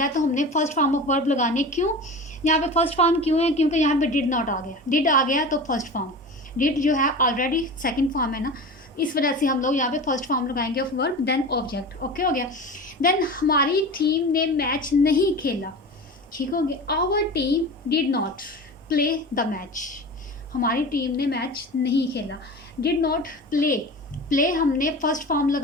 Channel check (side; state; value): both; normal; correlation 0.32